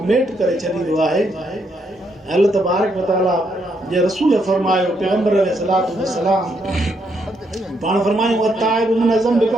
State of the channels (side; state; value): both; normal; correlation 0.76